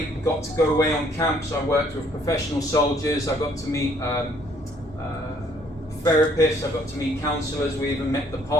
got to go away on camps. I worked with professional soldiers. I got to meet therapists. I got to meet counsellors. We even met the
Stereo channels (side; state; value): both; normal; correlation 0.64